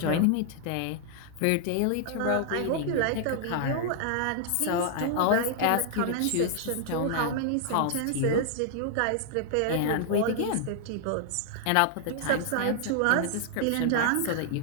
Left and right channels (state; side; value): different; both; correlation 0.00